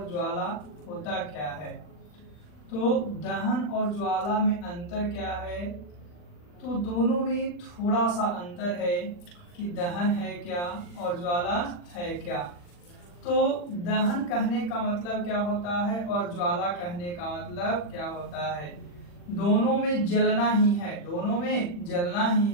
ज्वाला होता क्या है। तो दहन और ज्वाला में अंतर क्या है, तो दोनों में थोड़ा सा अंतर है कि दहन है क्या और ज्वाला है क्या। तो दहन कहने का मतलब क्या होता है और ज्वाला कहने का मतलब क्या होता है। दोनों में जलना ही है, दोनों में जलना ही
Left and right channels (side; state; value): right; late; 40 ms